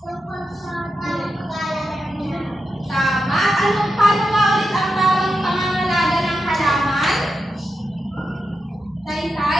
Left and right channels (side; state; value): both; normal; correlation 0.88